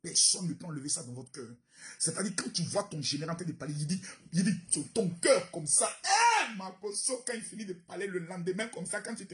personne ne peut enlever ça dans votre cœur. C'est-à-dire quand tu vois ton général en train de parler, il dit ton cœur comme ça. Ma potion, quand il finit de parler le lendemain comme ça, quand tu te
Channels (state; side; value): identical; both; correlation 1.00